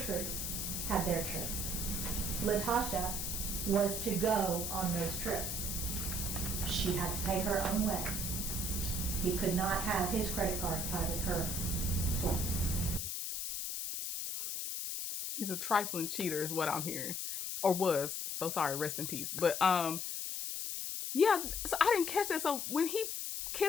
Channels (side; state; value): left; noise; hiss, 3 dB below the sound